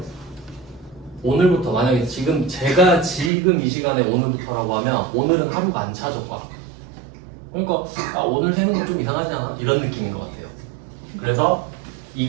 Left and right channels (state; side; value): drops out; left; at 3.3 s